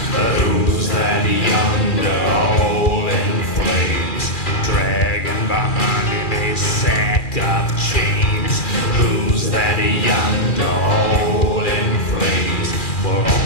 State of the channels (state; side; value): late; right; 2.4 ms